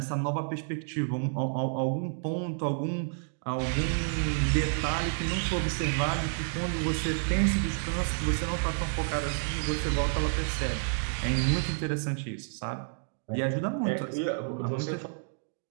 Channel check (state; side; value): silent; left; digital silence